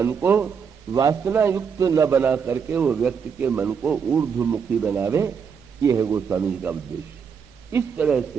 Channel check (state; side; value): quieter; left; 6.5 dB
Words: को वासना युक्त न बना करके वो व्यक्ति के मन को ऊर्ध्वमुखी बनावे। ये है गोस्वामी जी का उद्देश्य। इस तरह